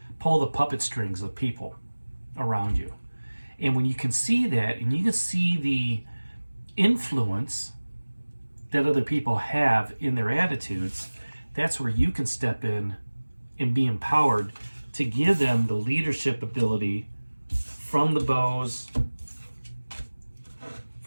pull the puppet strings of people around you. And when you can see that, and you can see the influence that other people have in their attitudes, that's where you can step in and be empowered to give them the leadership ability from the bows,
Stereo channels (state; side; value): inverted; both; correlation -1.00